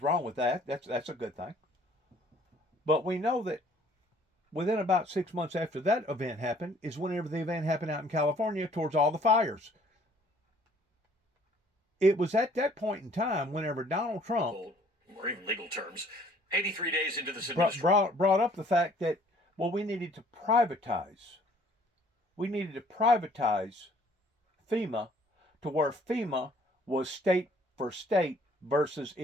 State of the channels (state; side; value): normal; both; correlation 0.58